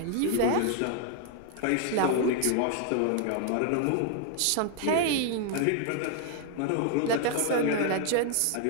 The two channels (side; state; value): both; different; correlation 0.00